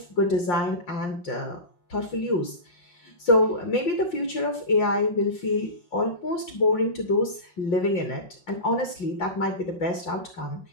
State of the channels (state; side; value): late; right; 5.7 ms